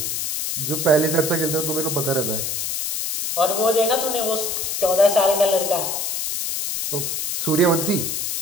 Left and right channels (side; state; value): left; noise; hiss, 2 dB below the sound